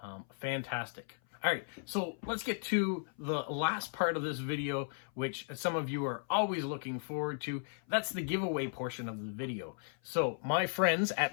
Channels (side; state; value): right; silent; 54 dB below the other